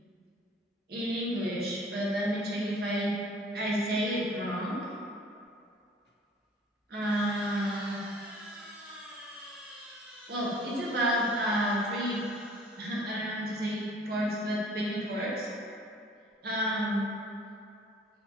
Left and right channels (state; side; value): normal; both; correlation 0.53